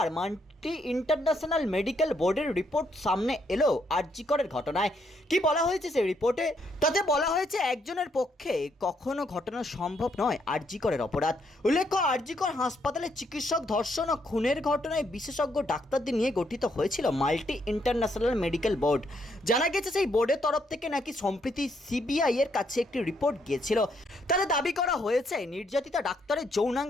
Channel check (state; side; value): normal; both; correlation 0.74